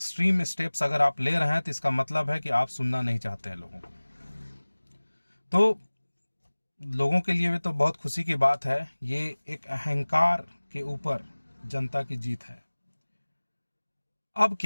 स्टेप्स अगर आप ले रहे हैं तो इसका मतलब है कि आप सुनना नहीं चाहते हैं लोगों को। तो लोगों के लिए भी तो बहुत खुशी की बात है। ये एक अहंकार के ऊपर जनता की जीत है। अब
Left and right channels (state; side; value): inverted; both; correlation -1.00